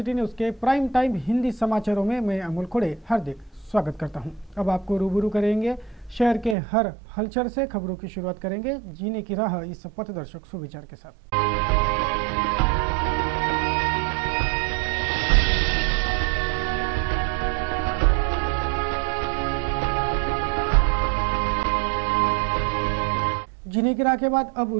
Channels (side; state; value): left; drops out; at 6.6 s